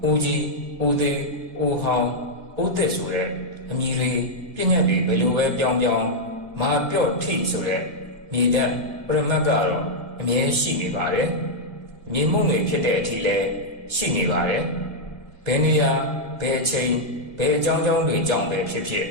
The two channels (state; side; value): late; left; 1.9 ms